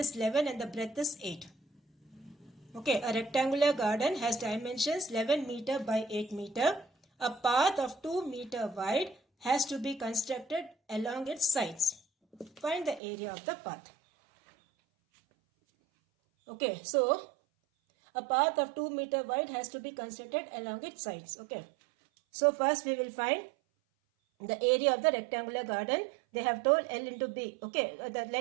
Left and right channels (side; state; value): left; drops out; at 13.0 s